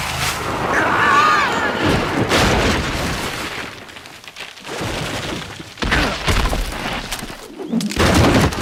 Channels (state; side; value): identical; both; correlation 1.00